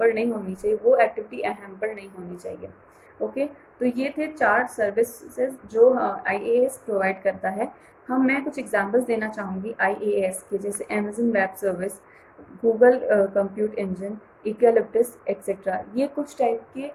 नहीं होनी चाहिए, वो एक्टिविटी हैम्पर नहीं होनी चाहिए। ओके, तो ये थे 4 सर्विसेज जो IaaS प्रोवाइड करता है। मैं कुछ एग्जांपल्स देना चाहूँगी IaaS के, जैसे Amazon web service, Google compute engine, Eucalyptus etcetera. ये कुछ टाइप के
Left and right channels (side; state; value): both; identical; correlation 1.00